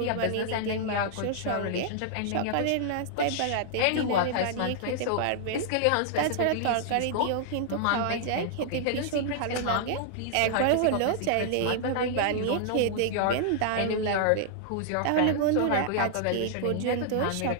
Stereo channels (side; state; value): both; different; correlation -0.01